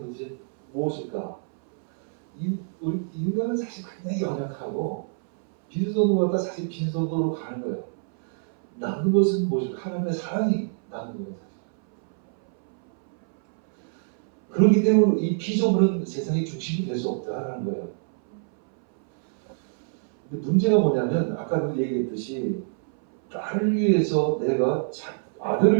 무엇일까? 우리 인간은 사실 굉장히 연약하고 빈손으로 갔다 사실 빈손으로 가는 거예요. 남는 것은 무엇일까? 하나님의 사랑이 남는 거예요. 사실. 그렇기 때문에 이 피조물은 세상의 중심이 될 수 없다라는 거예요. 근데 문제가 뭐냐면 아까도 얘기했듯이 딸을 위해서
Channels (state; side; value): silent; left; 60 dB below the other